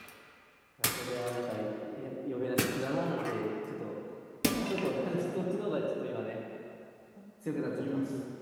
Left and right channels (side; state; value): both; identical; correlation 1.00